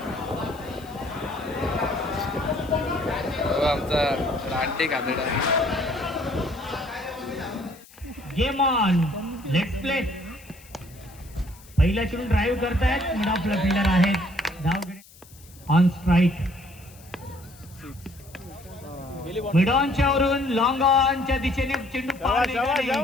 आमचा रानटी खादडा. Game on. Let's play. पहिल्या चेंडू ड्राईव्ह करतायत. मिड ऑफला फिल्डर आहेत. धाव ऑन स्ट्राईक. मिड ऑनच्या वरून लॉंग ऑनच्या दिशेने चेंडू पार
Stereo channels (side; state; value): left; noise; hiss, 23 dB below the sound